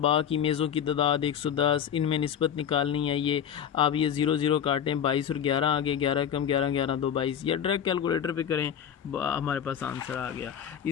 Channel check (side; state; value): right; quieter; 8.8 dB